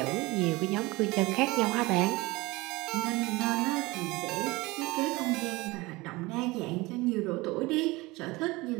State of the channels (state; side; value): quieter; left; 22.0 dB